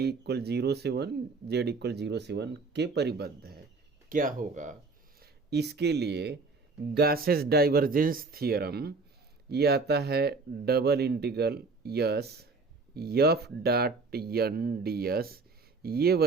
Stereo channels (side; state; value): left; quieter; 4.0 dB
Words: इक्वल 0 से 1 z इक्वल 0 से 1 के परिबद्ध है। क्या होगा इसके लिए गासेस डाइवर्जेंस थियरम, ये आता है double integral S F dot N D S. ये